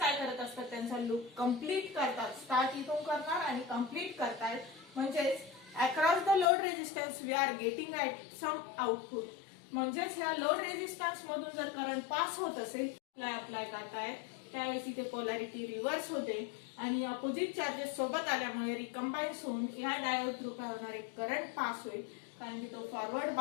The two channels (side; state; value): right; drops out; at 6.5 s